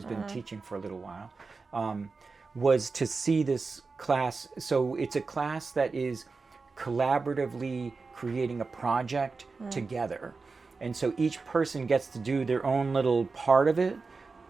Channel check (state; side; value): quieter; left; 4.3 dB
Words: been teaching for a little while, was to see this class. So it's a class that is collaboratively creating a project together. And so each person gets to do their own little part of it,